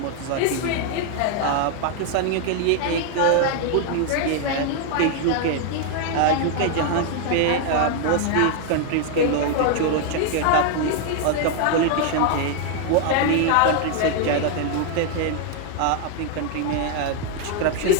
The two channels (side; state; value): both; different; correlation 0.00